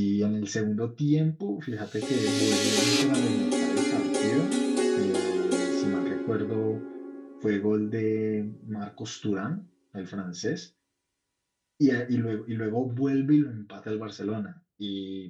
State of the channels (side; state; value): both; identical; correlation 1.00